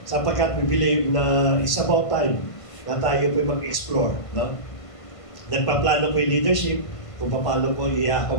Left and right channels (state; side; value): late; right; 1.5 ms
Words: Sapagkat we believe na it's about time na tayo po mag-explore. No? Nagpaplano po yung leadership, kung paano po